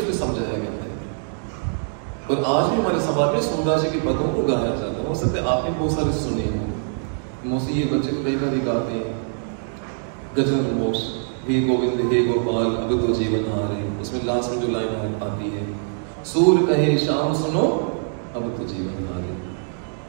समझाया गया है। और आज भी हमारे समाज में सूरदास जी के पदों को गाया जाता है। हो सकता है आपने बहुत सारे सुने हों, मोसी ये बच्चे को कई बार गाते हैं, गजन मोक्ष, हे गोविंद हे गोपाल अब तो जीवन हारे। उसमें लास्ट में जो लाइन आती है, सूर कहे शाम सुनो अब तो जीवन हारे।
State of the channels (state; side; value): silent; left; digital silence